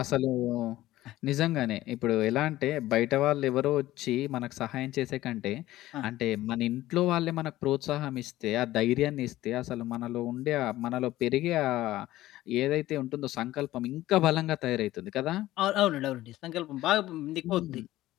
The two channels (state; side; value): quieter; right; 15.7 dB